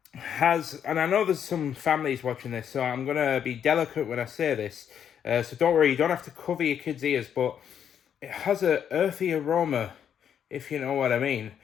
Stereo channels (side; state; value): right; quieter; 8.6 dB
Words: has, and I know there's some families watching this, so I'm gonna be delicate when I say this, so don't worry, you don't have to cover your kids' ears, but it has a earthy aroma, if you know what I mean.